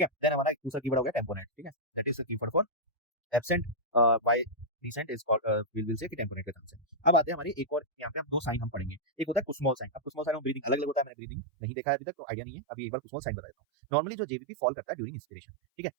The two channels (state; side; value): drops out; left; at 11.1 s